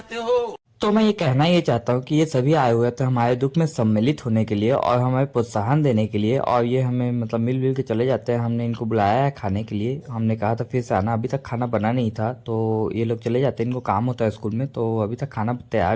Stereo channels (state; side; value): identical; both; correlation 1.00